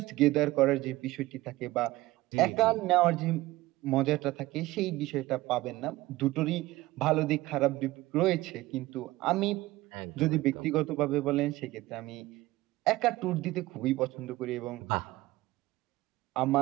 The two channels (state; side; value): quieter; left; 18.3 dB